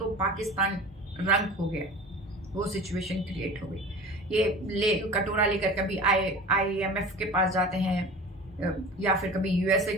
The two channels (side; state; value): both; normal; correlation 0.38